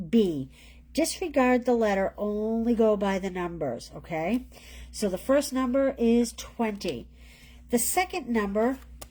B. Disregard the letter, only go by the numbers, okay? So the first number is 20. The second number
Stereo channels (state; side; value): identical; both; correlation 1.00